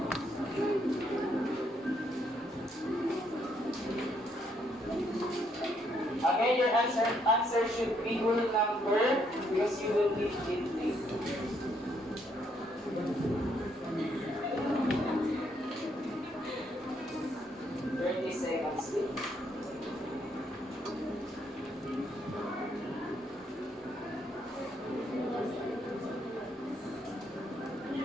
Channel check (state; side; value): normal; both; correlation 0.72